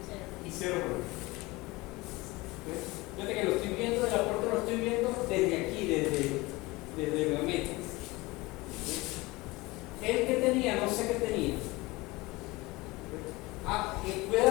¿Okay? Fíjate que lo estoy viendo, el aporte lo estoy viendo desde aquí, desde la meta. El que tenía, no sé qué tenía. Puede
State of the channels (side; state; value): right; quieter; 22.1 dB